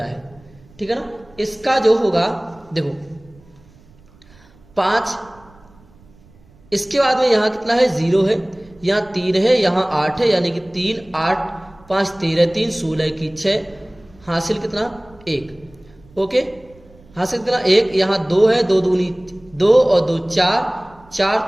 है, ठीक है ना। इसका जो होगा देखो 5, इसके बाद में यहां कितना है 0 है, यहां 3 है, यहां 8 है, यानी कि 3 8 5 13 3 16 की 6 हासिल कितना 1। ओके, हासिल कितना 1, यहां 2 है, 2 दूनी 2 और 2 4 4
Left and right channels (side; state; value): right; noise; rumble, 27 dB below the sound